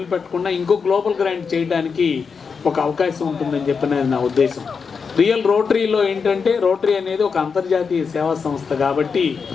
ఇంకో గ్లోబల్ గ్రాంట్ చేయడానికి ఒక అవకాశం ఉంటుందని చెప్పినది నా ఉద్దేశం. రియల్ రోటరీలో ఏంటంటే రోటరీ అనేది ఒక అంతర్జాతీయ సేవా సంస్థ కాబట్టి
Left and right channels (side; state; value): right; quieter; 5.6 dB